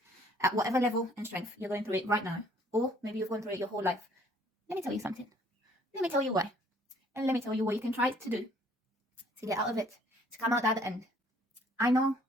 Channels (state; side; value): normal; both; correlation 0.59